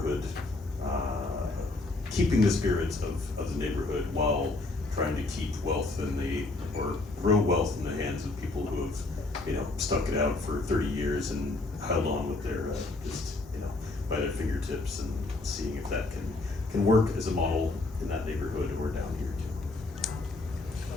keeping the spirit of the neighborhood while trying to keep wealth or grow wealth in the hands of people who have, stuck it out for 30 years and held on with their, by their fingertips, and seeing if that can work as a model in that neighborhood or down here too.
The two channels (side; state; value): right; quieter; 3.1 dB